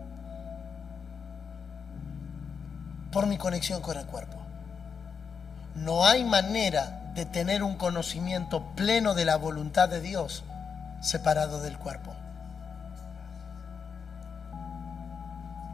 Por mi conexión con el cuerpo. No hay manera de tener un conocimiento pleno de la voluntad de Dios separado del cuerpo.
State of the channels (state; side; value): quieter; right; 6.1 dB